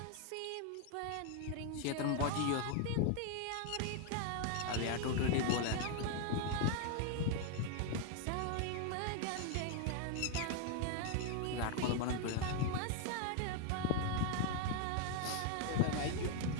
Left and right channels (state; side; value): different; both; correlation 0.00